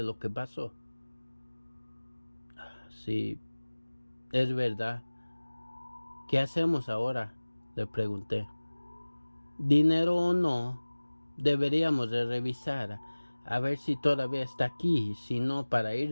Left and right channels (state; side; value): inverted; both; correlation -1.00